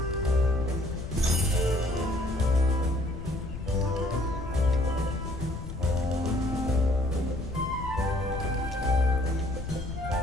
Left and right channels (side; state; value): left; noise; rumble, 9 dB below the sound